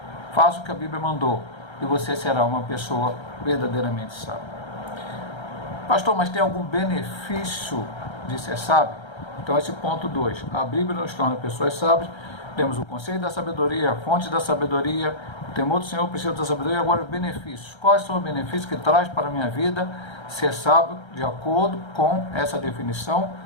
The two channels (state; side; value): late; right; 1.3 ms